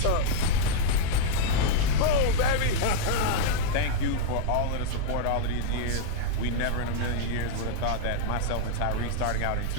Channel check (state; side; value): different; both; correlation -0.01